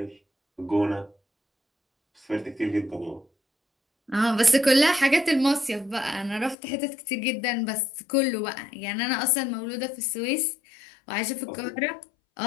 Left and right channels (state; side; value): drops out; right; at 6.6 s